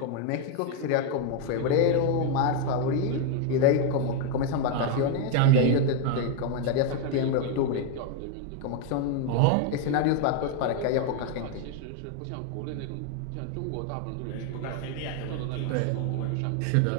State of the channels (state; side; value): different; both; correlation 0.00